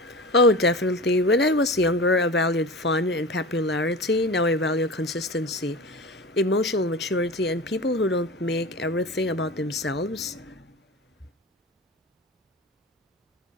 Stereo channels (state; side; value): normal; both; correlation 0.31